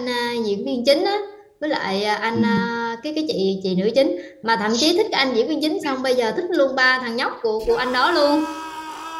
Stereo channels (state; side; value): identical; both; correlation 1.00